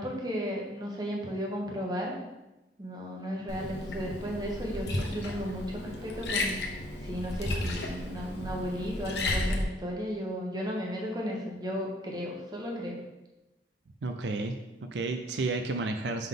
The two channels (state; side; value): normal; both; correlation 0.61